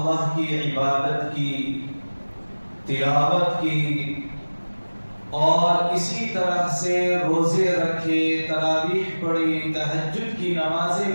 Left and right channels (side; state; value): both; inverted; correlation -1.00